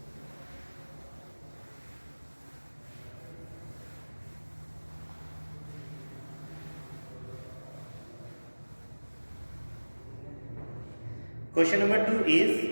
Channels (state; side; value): inverted; both; correlation -1.00